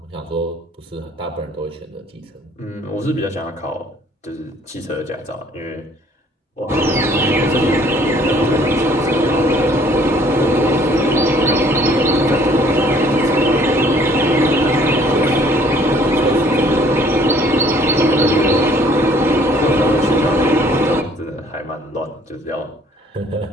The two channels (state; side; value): normal; both; correlation 0.59